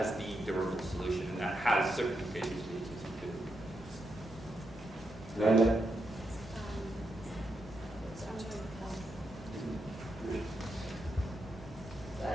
the durable solution, and that has certain implications for the agency too. Lala?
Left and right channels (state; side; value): normal; both; correlation 0.84